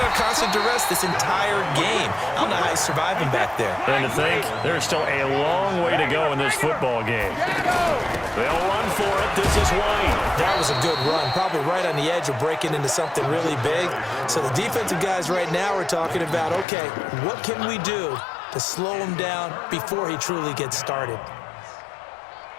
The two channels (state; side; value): drops out; right; at 16.7 s